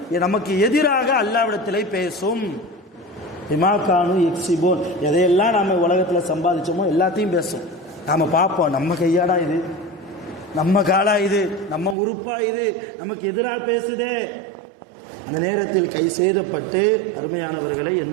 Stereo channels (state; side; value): drops out; left; at 12.0 s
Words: நமக்கு எதிராக அல்லாஹ்விடத்திலே பேசும். பிமாகானு எக்ஸிபோன், எதையெல்லாம் நாம் உலகத்தில் சம்பாதிச்சோமோ எல்லாத்தையும் பேசும். நாம் பார்ப்போம், நம்ம கையாடா இது, நம்ம காலா இது, நம்ம உறுப்பா இது, நமக்கு எதிராக பேசுதே. அந்த நேரத்தில் கை சேதப்பட்டு அருமையானவர்களை